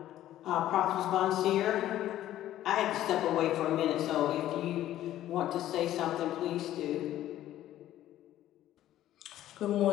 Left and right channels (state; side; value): quieter; right; 13.1 dB